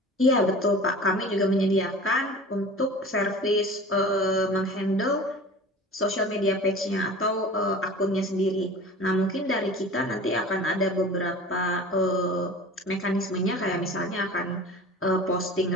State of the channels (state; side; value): normal; both; correlation 0.39